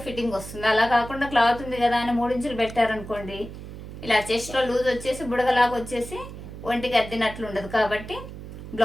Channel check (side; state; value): right; noise; hum, 12 dB below the sound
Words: ఫిట్టింగ్ వస్తుంది. అలా కాకుండా క్లాత్ ఉంది కదా అని 3 ఇంచులు పెట్టారనుకోండి, ఇలా చెస్ట్లో లూజ్ వచ్చేసి బుడగలాగా వచ్చేసి ఒంటికి అద్దినట్లు ఉండదు. కాబట్టి